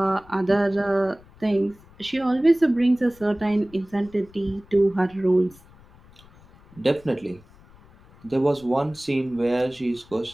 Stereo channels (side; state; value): left; noise; rumble, 25 dB below the sound